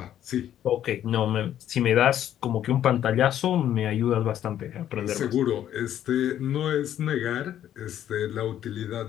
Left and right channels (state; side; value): quieter; right; 11.1 dB